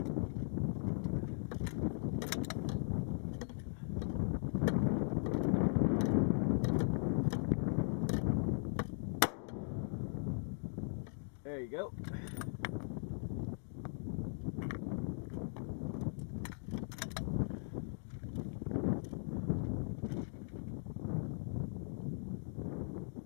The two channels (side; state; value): right; silent; digital silence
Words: There you go.